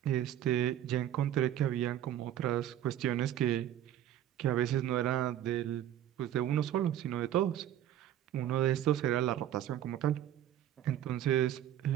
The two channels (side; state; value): left; quieter; 11.4 dB